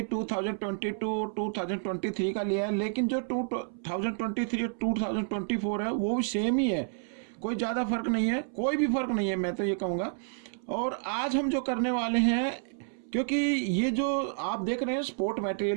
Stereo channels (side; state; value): left; silent; 58 dB below the other